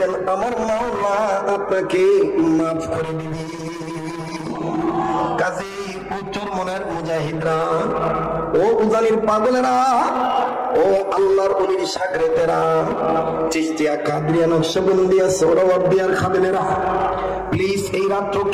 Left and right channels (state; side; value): identical; both; correlation 1.00